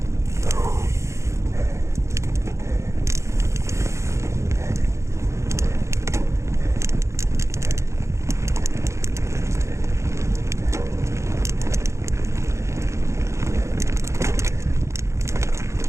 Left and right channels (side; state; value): left; late; 0.14 ms